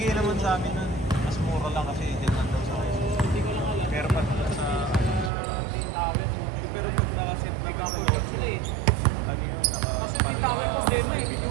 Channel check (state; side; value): drops out; left; at 5.3 s